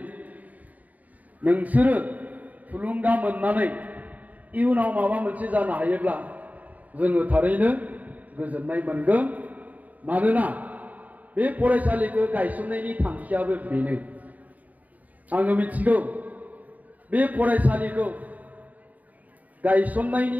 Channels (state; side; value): late; left; 0.075 ms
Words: नोंसोरो थुलुंगा मोननानै इयुनाव माबा मोनसे जानो हायोब्ला जोङो थारैनो गोजोननाय मोनगोन। मानोना बे फरायसालिखौ गायसननायनि थांखियाबो बेनो। आङो मिथिगौ बे फरायसालिखौ